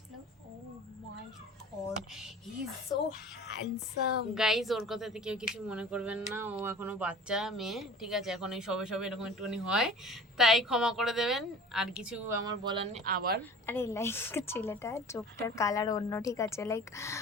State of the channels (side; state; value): both; normal; correlation 0.42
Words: oh my god, he is so handsome. Guys ওর কথাতে কেউ কিছু মনে করবেন না, ও এখনো বাচ্চা মেয়ে, ঠিক আছে, এখন এই সবে সবে এরকম একটুখানি হয়, তাই ক্ষমা করে দেবেন, আর কিছু আমার বলার নেই। আবার আরে লাইক ছেলেটা চোখটার কালার অন্য, ঠিক আছে, লাইক